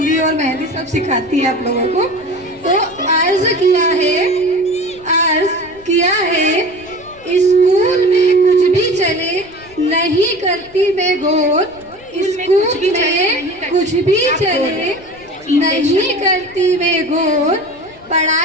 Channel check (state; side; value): noise; left; rumble, 26 dB below the sound